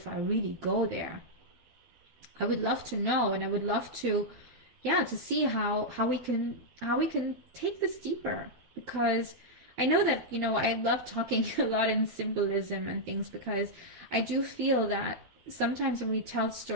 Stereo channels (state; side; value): late; left; 12 ms